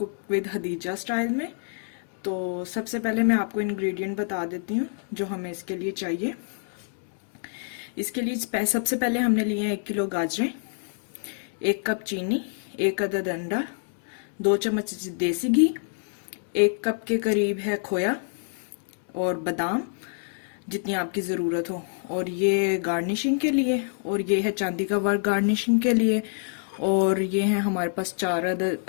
विद हदीजा स्टाइल में। तो सबसे पहले मैं आपको इंग्रेडिएंट बता देती हूँ जो हमें इसके लिए चाहिए। इसके लिए सबसे पहले हमने लिए हैं 1 किलो गाजरें, 1 कप चीनी, 1 अदद अंडा, 2 चम्मच देसी घी, 1 कप के करीब है खोया और बादाम जितनी आपकी ज़रूरत हो, और ये गार्निशिंग के लिए, और ये है चांदी का वर्क गार्निशिंग के लिए, और ये है हमारे पास 4 अदद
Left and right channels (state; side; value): silent; right; digital silence